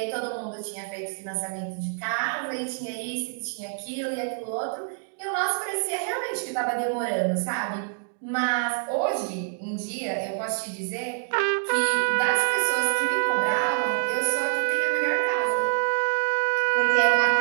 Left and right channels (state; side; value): silent; left; digital silence